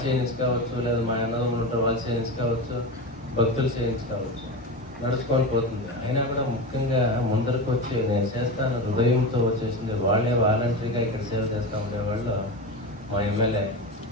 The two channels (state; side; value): normal; both; correlation 0.23